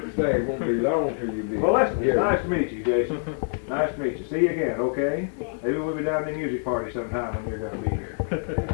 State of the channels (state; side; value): silent; right; 61 dB below the other